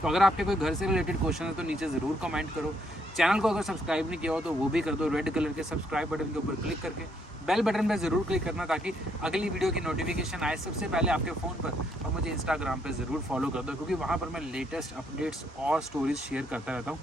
तो अगर आपके कोई घर से रिलेटेड क्वेश्चन है तो नीचे ज़रूर कमेंट करो। चैनल को अगर सब्सक्राइब नहीं किया हो तो वो भी कर दो, रेड कलर के सब्सक्राइब बटन के ऊपर क्लिक करके बेल बटन पर ज़रूर क्लिक करना, ताकि अगली वीडियो की नोटिफिकेशन आए सबसे पहले आपके फ़ोन पर। और मुझे इंस्टाग्राम पे ज़रूर फॉलो कर दो, क्योंकि वहाँ पर मैं लेटेस्ट अपडेट्स और स्टोरीज शेयर करता रहता हूँ।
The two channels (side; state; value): both; normal; correlation 0.72